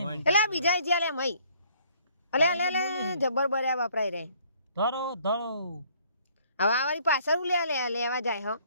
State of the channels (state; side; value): inverted; both; correlation -0.61